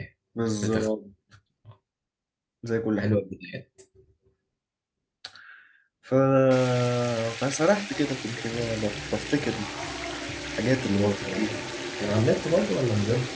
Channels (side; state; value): both; identical; correlation 1.00